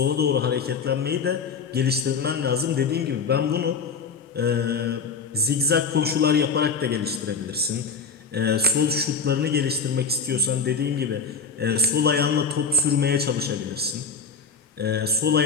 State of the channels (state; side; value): quieter; right; 5.1 dB